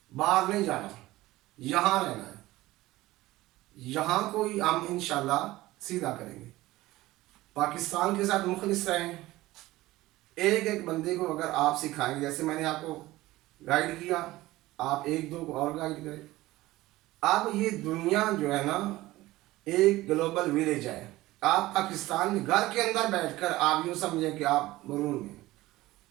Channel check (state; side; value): quieter; left; 17.8 dB